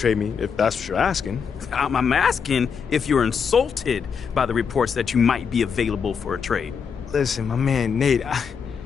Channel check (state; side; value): quieter; right; 6.4 dB